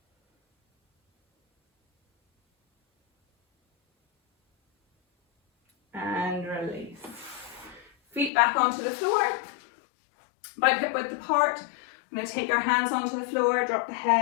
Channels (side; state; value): right; drops out; at 8.3 s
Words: And release. Feet back onto the floor, about hip width apart. I'm going to take our hands onto the floor, drop the